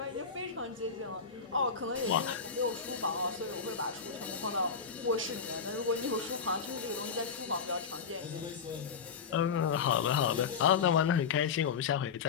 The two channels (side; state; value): right; quieter; 6.1 dB